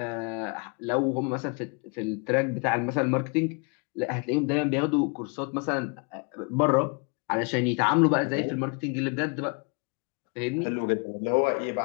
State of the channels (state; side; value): quieter; right; 34.8 dB